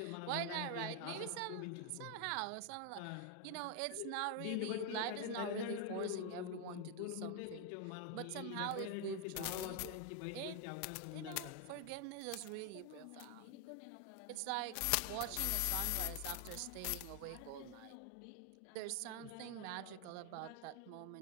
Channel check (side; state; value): both; different; correlation 0.00